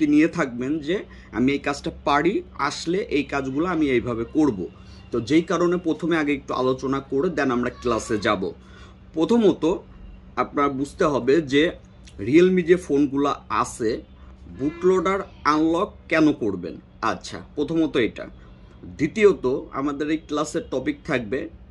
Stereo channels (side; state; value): both; identical; correlation 1.00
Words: নিয়ে থাকবেন যে আমি এই কাজটা পারি, আসলে এই কাজগুলো আমি এইভাবে করব। তো যেই কারণে প্রথমে আগে একটু আলোচনা করে দেন আমরা ক্লাসে যাব। প্রথমত আপনার বুঝতে হবে যে রিয়েলমি যে ফোনগুলো আছে, বুটলোডার আনলক কেন করবেন। আচ্ছা, প্রথমত এটা। দ্বিতীয়ত আমাদের এই ক্লাসের টপিক থাকবে